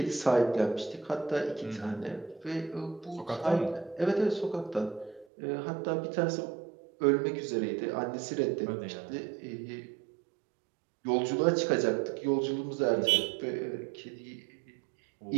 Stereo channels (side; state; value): left; drops out; at 5.2 s